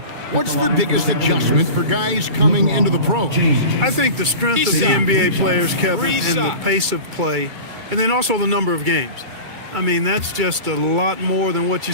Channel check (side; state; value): left; late; 2.3 ms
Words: What's the biggest adjustment for guys coming into the pros? I think the strength of the NBA players, Kevin, and the pace of play, and then also the number of games. I mean, that's just a lot more than what